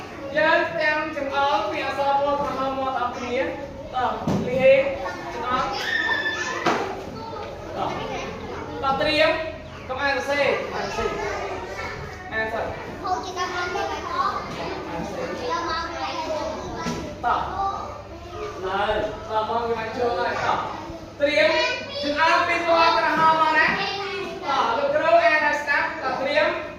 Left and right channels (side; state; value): both; identical; correlation 1.00